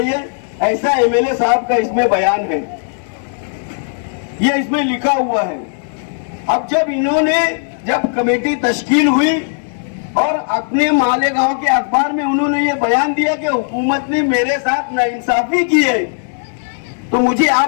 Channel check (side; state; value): right; silent; digital silence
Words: है, ऐसा एमएलए साहब का इसमें बयान है। ये इसमें लिखा हुआ है। अब जब कमेटी तश्कील हुई और अपने मालेगांव के अखबार में उन्होंने ये बयान दिया कि हुकूमत ने मेरे साथ नाइंसाफी की है, तो मुझे